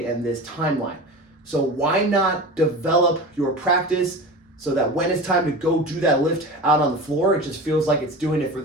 and this timeline. So why not develop your practice so that when it's time to go do that lift out on the floor, it just feels like it's doing it for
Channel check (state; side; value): normal; both; correlation 0.31